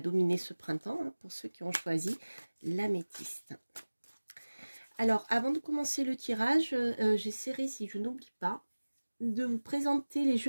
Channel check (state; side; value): inverted; both; correlation -1.00